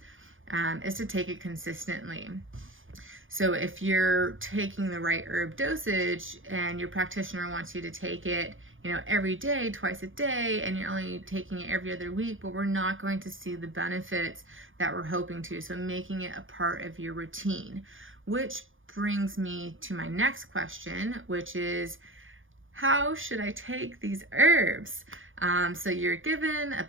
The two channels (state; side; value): late; left; 0.58 ms